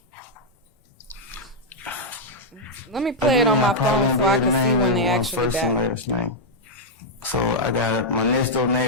Let me play it on my I probably phone so won't I be can able to see name when they everyone's actually first and back. last name. So I got my next door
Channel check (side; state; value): both; normal; correlation -0.02